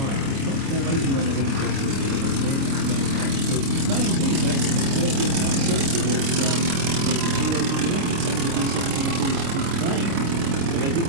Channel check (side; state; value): left; late; 29 ms